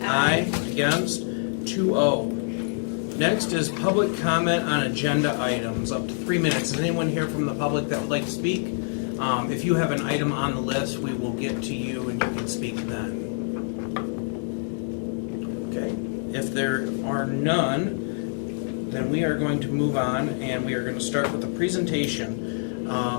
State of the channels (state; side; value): silent; right; 61 dB below the other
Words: Aye. Against? 2-0. Next is public comment on agenda items, up to 3 minutes. Is anyone here from the public that would like to speak? If you have an item on the list, we will get to you and you can speak then. Okay. If there are none, then we are going to move on, and we are going to start with a presentation